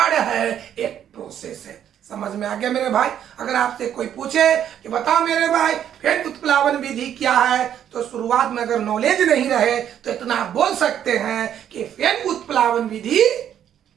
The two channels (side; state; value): left; quieter; 9.9 dB